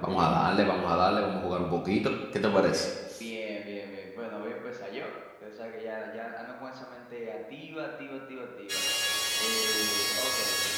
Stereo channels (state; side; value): identical; both; correlation 1.00